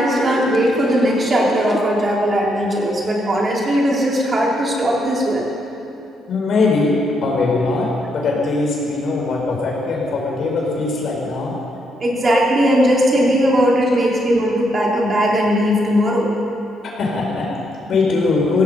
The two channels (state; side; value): normal; both; correlation 0.76